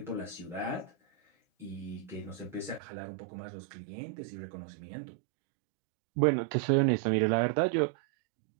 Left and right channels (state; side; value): drops out; left; at 2.8 s